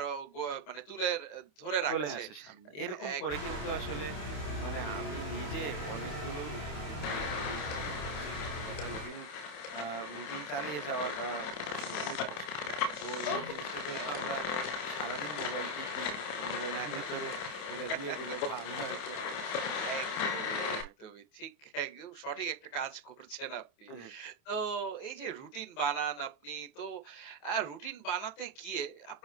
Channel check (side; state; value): right; late; 27 ms